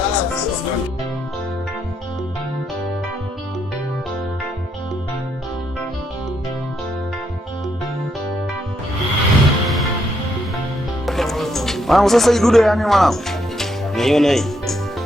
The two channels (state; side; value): normal; both; correlation 0.76